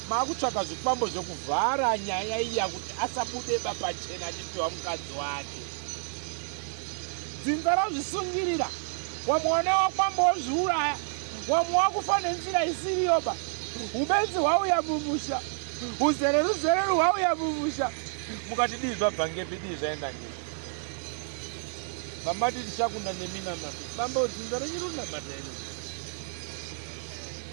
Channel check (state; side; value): silent; left; 58 dB below the other